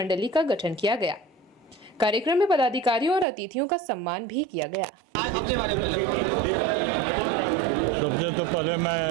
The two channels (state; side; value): drops out; left; at 3.2 s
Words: का गठन किया गया। कार्यक्रम में पदाधिकारियों और अतिथियों का सम्मान भी किया गया। सबसे तो पहले मैं